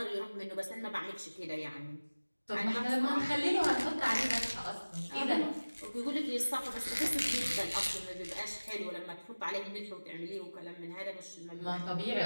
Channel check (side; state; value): both; inverted; correlation -1.00